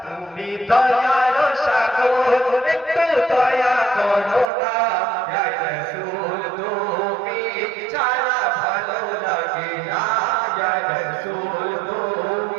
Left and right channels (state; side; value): drops out; left; at 4.5 s